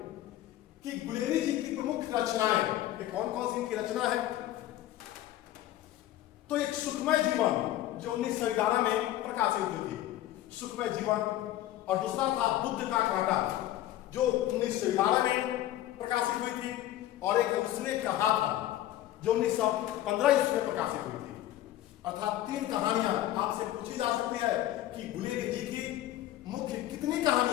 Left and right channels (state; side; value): quieter; right; 13.8 dB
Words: कि गुलेरी जी की प्रमुख रचनाएं कौन कौन सी इनकी रचना है। तो एक सुखमय जीवन जो 1911 में प्रकाशित हुई थी, सुखमय जीवन, और दूसरा था बुद्ध का कांटा जो 1911 में प्रकाशित हुई थी, और एक उसने कहा था जो 1915 ईस्वी में प्रकाशित हुई थी। अर्थात 3 कहानियां आपसे पूछी जा सकती है कि गुलेरी जी की मुख्य कितनी